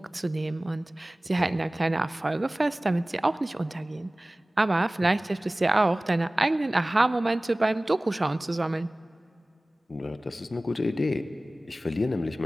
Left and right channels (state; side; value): normal; both; correlation 0.98